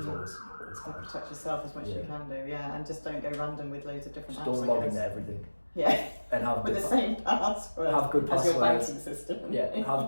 always hard. Protect yourself as much as you can do, and just don't go random with loads of different just apps. Don't log into everything. Yeah. And have with the same password. Have good passwords. As your banking system. Yeah.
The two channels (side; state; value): both; inverted; correlation -1.00